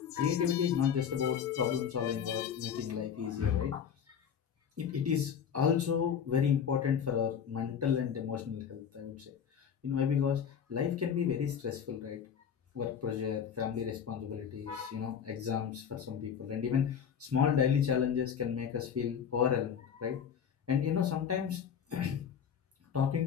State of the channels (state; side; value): quieter; right; 7.8 dB